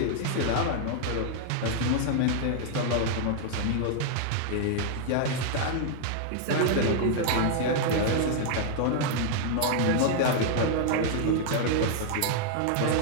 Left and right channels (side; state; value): both; different; correlation 0.00